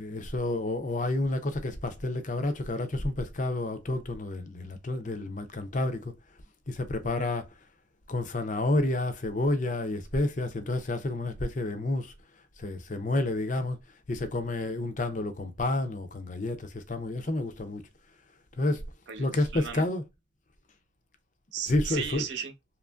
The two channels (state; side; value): normal; both; correlation 0.65